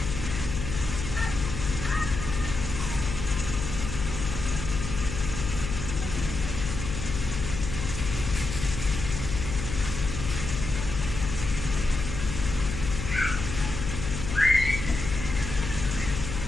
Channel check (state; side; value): noise; left; hum, 5 dB below the sound